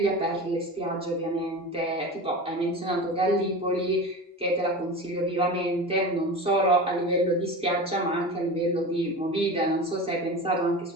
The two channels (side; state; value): both; normal; correlation 0.30